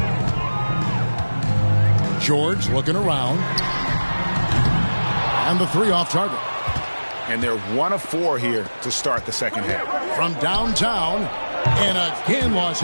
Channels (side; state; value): both; inverted; correlation -1.00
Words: George looking around. And the 3 off target. And they're 1 of 4 here to start the second half. From downtown, and again Los